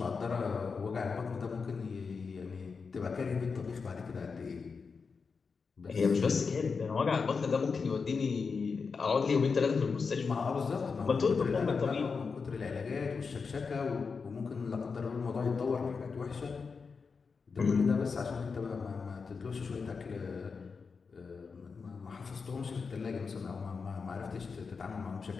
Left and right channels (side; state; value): right; quieter; 5.1 dB